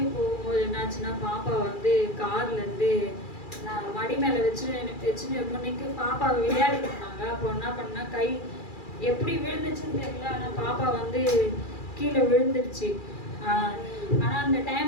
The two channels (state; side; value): late; right; 2.4 ms